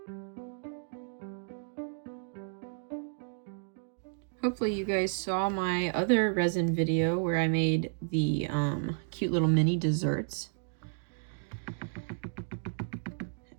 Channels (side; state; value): left; silent; 56 dB below the other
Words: Hopefully you guys saw my other resin video where I made the cute little mini desserts.